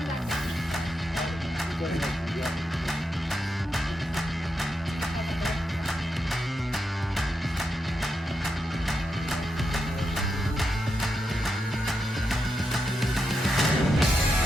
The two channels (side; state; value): both; normal; correlation 0.85